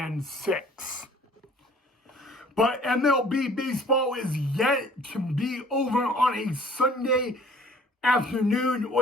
But MLB baseball is yet to be over on a Sunday afternoon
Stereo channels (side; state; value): both; normal; correlation 0.53